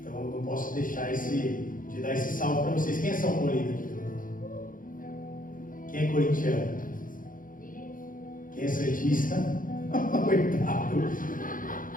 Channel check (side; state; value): right; late; 0.40 ms